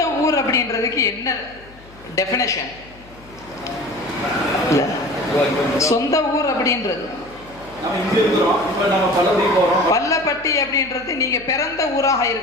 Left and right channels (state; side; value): noise; left; hum, 23 dB below the sound